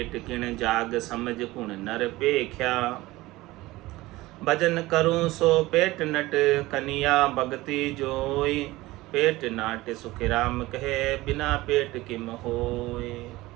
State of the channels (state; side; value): quieter; left; 18.9 dB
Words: किण जाग, समझ कुण नर पेख्या। भजन करूं सो पेट नट, कनिया भगति जोई। पेट नाट सुख राम कहे, बिना पेट किम होए।